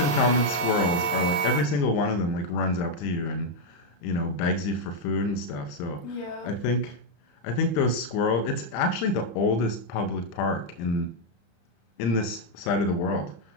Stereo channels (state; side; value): late; right; 34 ms